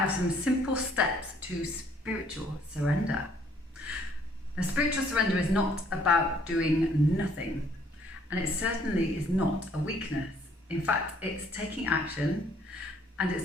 some simple steps to spiritual surrender. Now, spiritual surrender is not about doing nothing, and it certainly is not a weakness. In fact, it's taking action, and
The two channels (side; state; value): both; normal; correlation 0.63